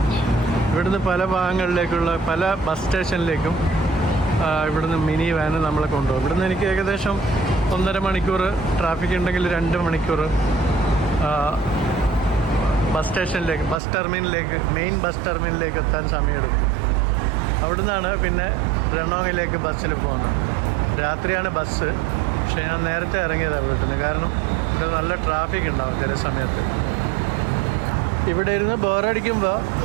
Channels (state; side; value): drops out; left; at 13.8 s